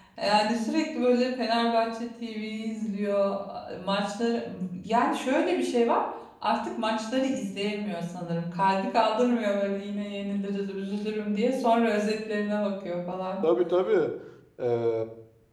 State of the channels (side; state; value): both; identical; correlation 1.00